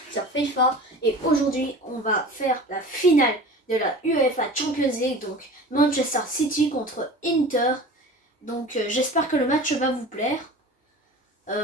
sur FIFA et aujourd'hui on va faire la finale de la UEFA Champions League, donc Manchester City contre Inter. Donc j'espère que le match va vous plaire.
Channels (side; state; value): both; normal; correlation 0.38